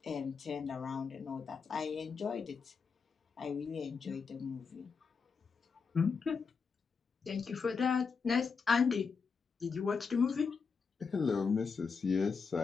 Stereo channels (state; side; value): quieter; right; 5.4 dB